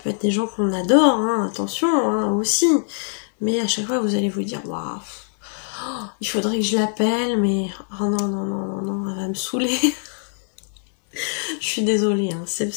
être des gens qu'on adore, hein, attention, hein, aussi. Mais à chaque fois, vous allez vous dire, waouh, il faudrait que je l'appelle, mais oh non, non, non, non, non, elle va me saouler. Je suis désolée, hein, c'est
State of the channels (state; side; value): silent; right; 60 dB below the other